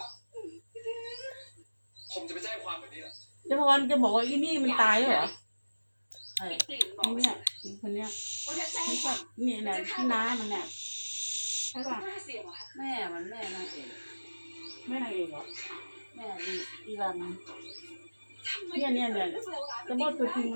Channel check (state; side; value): inverted; both; correlation -1.00